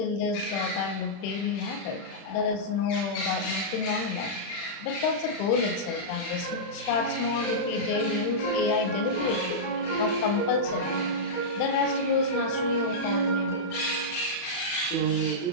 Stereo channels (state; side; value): late; right; 31 ms